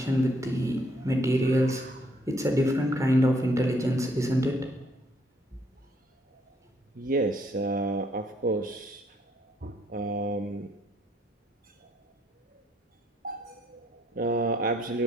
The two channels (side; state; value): both; normal; correlation 0.68